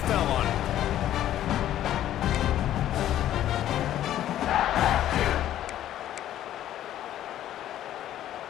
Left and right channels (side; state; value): right; quieter; 12.2 dB